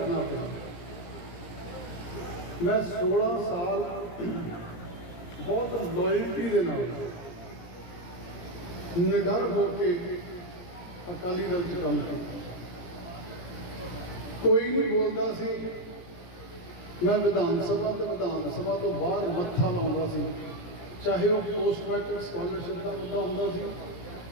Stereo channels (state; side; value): late; right; 17 ms